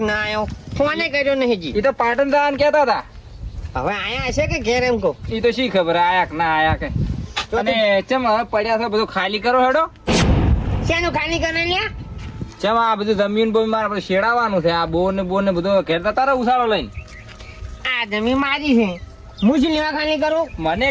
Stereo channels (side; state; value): both; identical; correlation 1.00